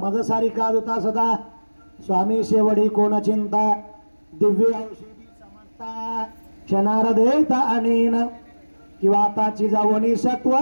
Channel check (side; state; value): both; inverted; correlation -1.00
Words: सारी काज होता सदा स्वामी शेवडी कोण चिंता दिव्य औषधी समजता क्षणार देता अनेन किंवा आताची जावणी